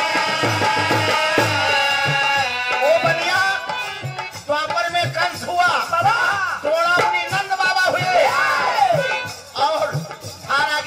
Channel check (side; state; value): both; identical; correlation 1.00